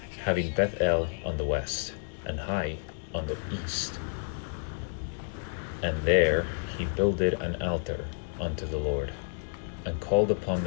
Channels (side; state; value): right; silent; digital silence